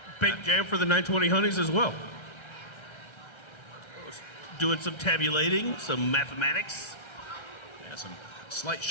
Big jam for the 920 Honeys as well. Doing some tabulating, some mathematics. Yeah, some slight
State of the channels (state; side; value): late; right; 1.3 ms